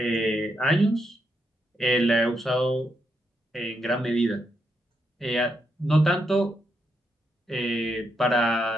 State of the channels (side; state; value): both; normal; correlation 0.80